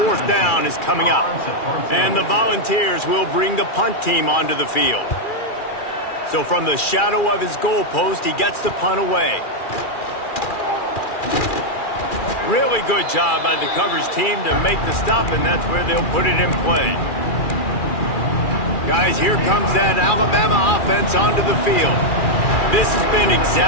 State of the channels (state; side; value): late; right; 2.4 ms